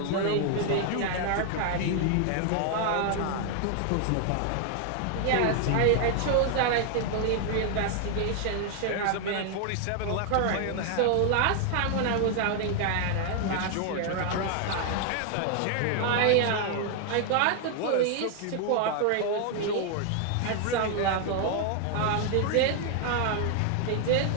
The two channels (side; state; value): both; different; correlation 0.00